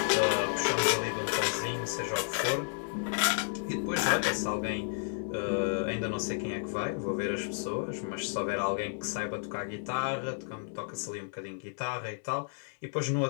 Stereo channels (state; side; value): silent; right; 56 dB below the other